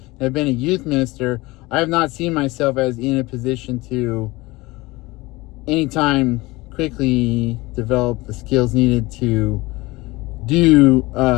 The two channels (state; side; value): quieter; right; 21.4 dB